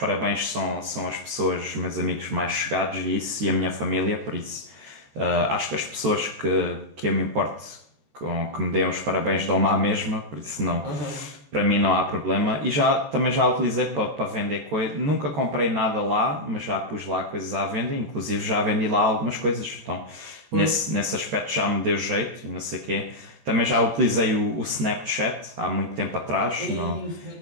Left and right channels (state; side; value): late; left; 14 ms